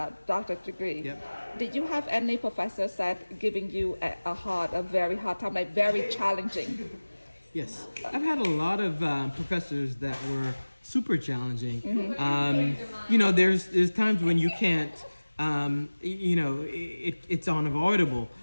doctorate degree, did you have any professors that giving you a very hard time, like very challenging? Yes, I've had a lot of professors that were super challenging. You know, there's times when you can't, you know, it's unavoidable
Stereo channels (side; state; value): both; inverted; correlation -1.00